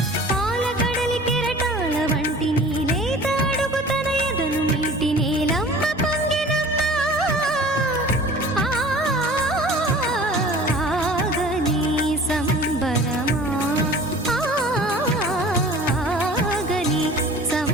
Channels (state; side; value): normal; both; correlation 0.44